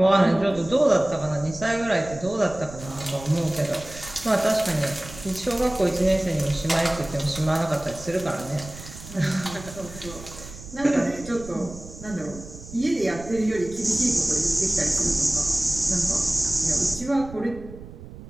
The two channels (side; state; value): right; noise; rumble, 15 dB below the sound